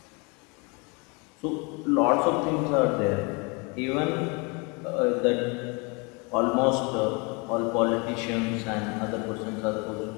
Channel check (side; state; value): right; quieter; 30.7 dB